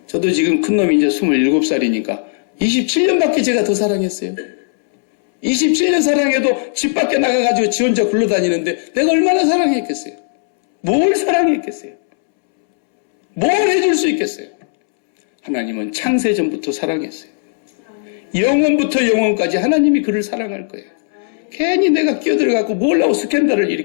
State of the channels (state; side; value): silent; right; 69 dB below the other